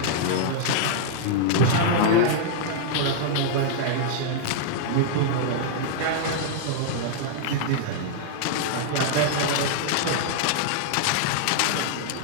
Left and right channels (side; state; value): both; different; correlation -0.01